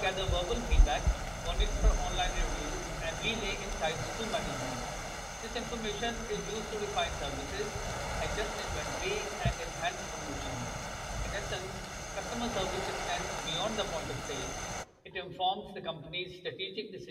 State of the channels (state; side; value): identical; both; correlation 1.00